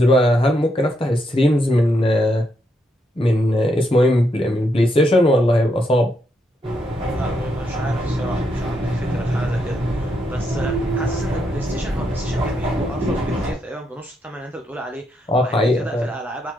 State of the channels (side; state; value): both; normal; correlation 0.79